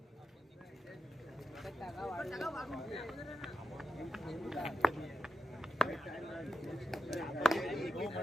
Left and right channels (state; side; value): normal; both; correlation 0.91